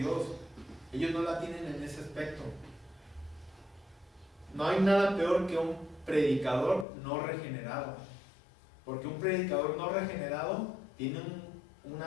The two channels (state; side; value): drops out; right; at 6.9 s